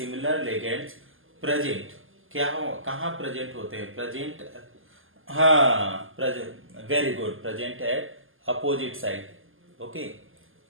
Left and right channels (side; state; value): left; late; 0.59 ms